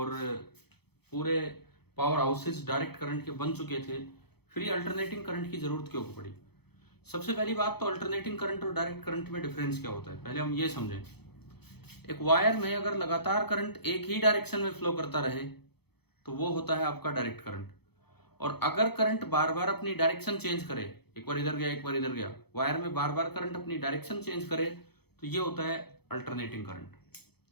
पूरे पावर हाउसेस डायरेक्ट करंट के बन चुके थे, फिर ये अल्टरनेटिंग करंट की ज़रूरत क्यों पड़ी? सबसे पहली बात तो अल्टरनेटिंग करंट और डायरेक्ट करंट में डिफरेंस क्या होता है, पहले हम ये समझें। एक वायर में अगर लगातार करंट एक ही डायरेक्शन में फ्लो करता रहे तो वो होता है आपका डायरेक्ट करंट। और अगर करंट बार बार अपनी डायरेक्शन चेंज करे, एक बार इधर गया एक बार इधर गया, वायर में बार बार करंट अपनी डायरेक्शन चेंज करे, तो ये होता है अल्टरनेटिंग करंट।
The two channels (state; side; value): late; right; 0.97 ms